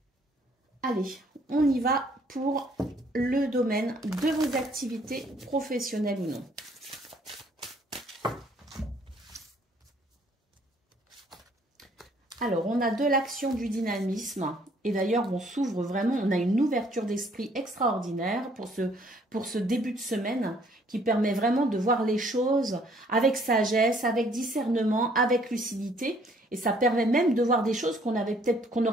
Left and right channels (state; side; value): normal; both; correlation 0.62